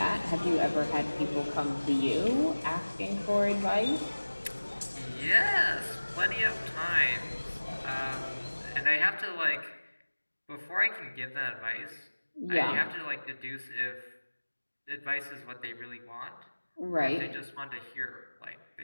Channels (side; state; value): both; inverted; correlation -1.00